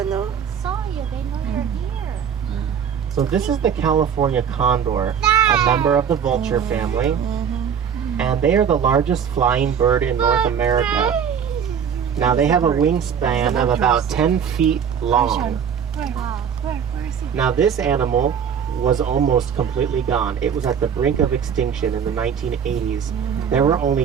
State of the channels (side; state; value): left; quieter; 7.6 dB